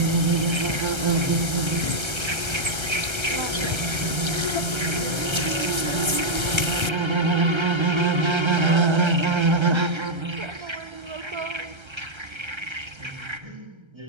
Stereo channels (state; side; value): late; left; 1.3 ms